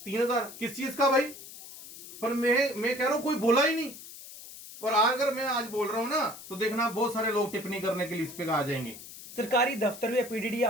3000, किस चीज का भाई। पर मैं कह रहा हूं कोई बोला ही नहीं, और अगर मैं आज बोल रहा हूं ना तो देखना बहुत सारे लोग टिप्पणी करने के लिए इस पे आ जाएंगे। सरकारी दफ्तर या पीडीडी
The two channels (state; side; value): noise; left; hiss, 15 dB below the sound